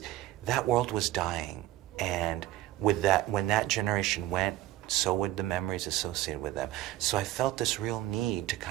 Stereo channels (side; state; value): left; quieter; 15.1 dB